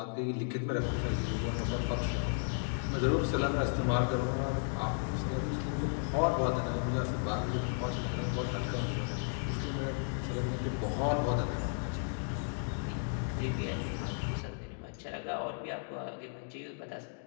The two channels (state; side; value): silent; right; 55 dB below the other